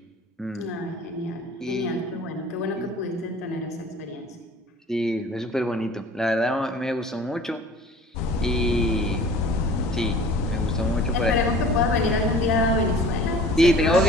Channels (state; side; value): normal; both; correlation 0.46